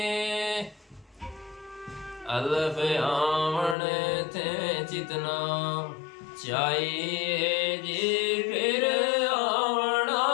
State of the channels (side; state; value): right; drops out; at 3.8 s